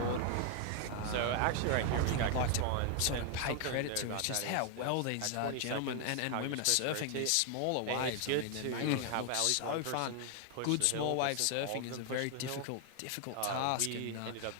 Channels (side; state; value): both; different; correlation 0.00